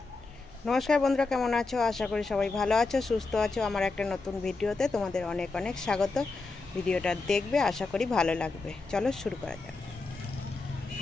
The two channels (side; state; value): right; quieter; 3.8 dB